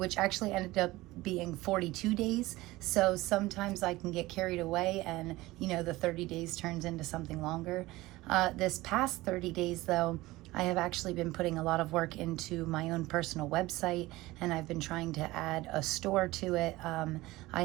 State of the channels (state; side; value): quieter; left; 19.0 dB